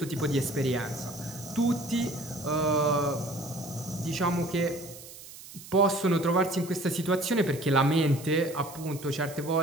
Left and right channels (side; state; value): right; noise; hiss, 16 dB below the sound